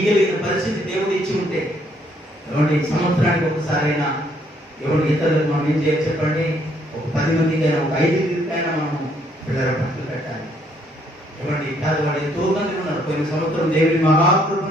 పరిస్థితి దేవుడు ఇచ్చి ఉంటే, ఎవరి సంవత్సరానికి ఒకసారైనా ఎవరి ఇతరులకు మనం ఏం చేయాలి చెప్పండి? ఒక 10 మందికైనా, ఒక 5 మనం పిల్లల బట్టలు పెట్టాలి. ఎవరి పేదవాడు ఎంతో మంది ఉన్నారు. పోయిన సంవత్సరం దేవుని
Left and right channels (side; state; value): both; normal; correlation 0.68